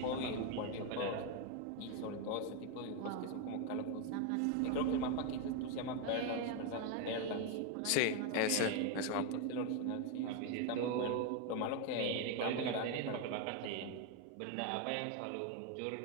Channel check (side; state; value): both; different; correlation 0.01